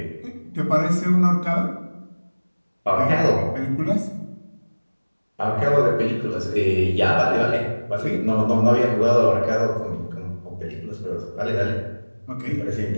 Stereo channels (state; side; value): inverted; both; correlation -1.00